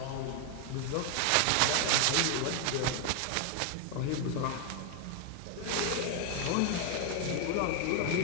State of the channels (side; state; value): both; different; correlation 0.01